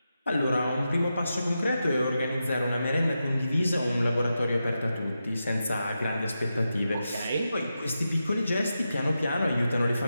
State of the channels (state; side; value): inverted; both; correlation -0.89